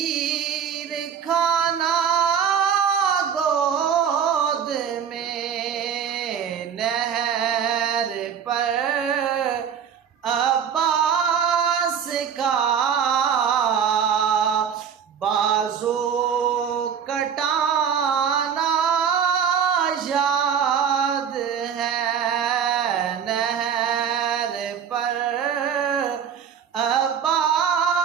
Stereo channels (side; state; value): left; quieter; 7.8 dB